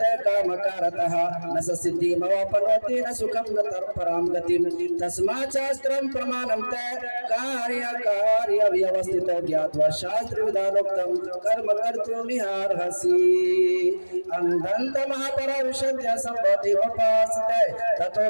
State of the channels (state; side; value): inverted; both; correlation -1.00